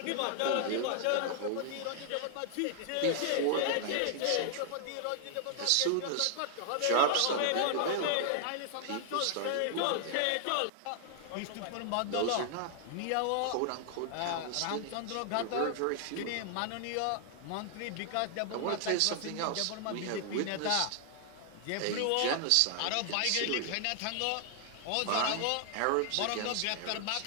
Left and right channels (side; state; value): both; different; correlation 0.00